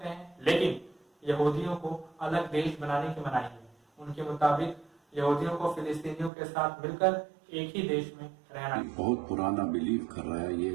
हैं, लेकिन यहूदियों को अलग देश बनाने की मनाही है। उनके मुताबिक यहूदियों को फिलिस्तीनियों के साथ मिलकर एक ही देश में रहना। बहुत पुराना बिलीव कर रहा है, ये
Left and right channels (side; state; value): left; drops out; at 6.3 s